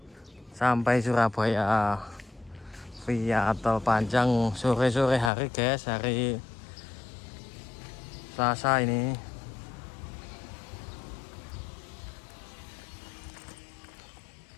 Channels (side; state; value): right; drops out; at 5.3 s